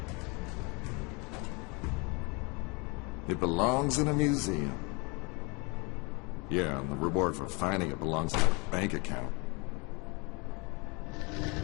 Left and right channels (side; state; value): right; quieter; 29.5 dB